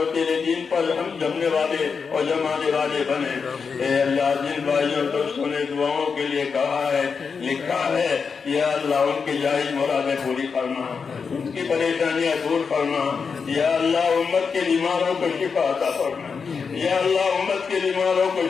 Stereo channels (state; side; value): quieter; right; 5.6 dB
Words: تیرے دین پر ہم جمنے والے اور جمانے والے بنے اے اللہ جن بھائیوں اور دوستوں نے دعاؤں کے لیے کہا ہے لکھا ہے یا اللہ ان کی جائز مرادیں پوری فرما ان کی پریشانیاں دور فرما یا اللہ امت کے بیماروں کو شفا عطا فرما یا اللہ امت کے بیماروں کو